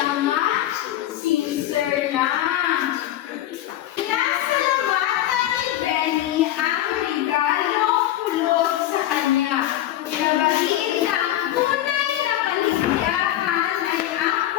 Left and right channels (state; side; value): quieter; right; 13.3 dB